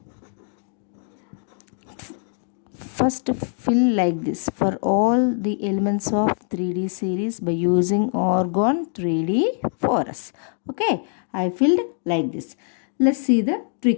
First fill like this for all the elements of 3D series by using argon 3D4s. I filled like this. Let's see the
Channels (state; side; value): silent; right; digital silence